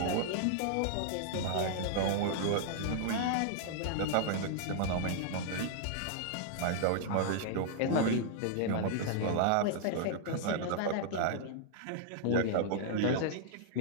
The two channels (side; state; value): both; different; correlation -0.01